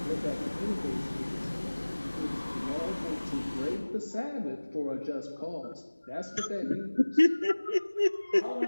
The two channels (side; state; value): both; inverted; correlation -1.00